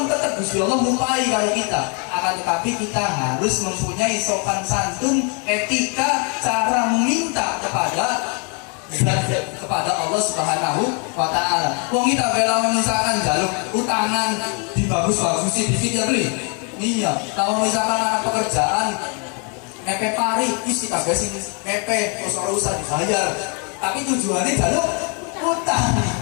tetap Gusti Allah mumpai kalau kita. Akan tetapi kita harus mempunyai sopan santun, etika, cara meminta kepada Allah Subhanahu wa Ta'ala. Wong kita bela misalkan jaluk utangan dibagus-bagusi dikit ya beli. Iya, kalau misalkan ada pekerjaan mepe pari, isi kagak sih mepe, terus orang usah dibayar. Tapi tujuannya jaluk utang.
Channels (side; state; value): right; quieter; 36.5 dB